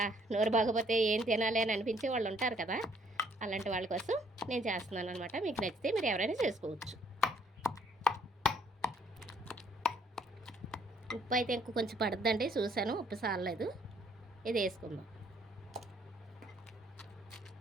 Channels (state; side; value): normal; both; correlation 0.65